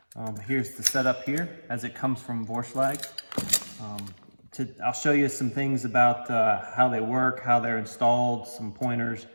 Here's the setup here as it comes from Vorshlag. I'll show you some things about how they work, how they're installed, some pointers,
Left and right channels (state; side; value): inverted; both; correlation -1.00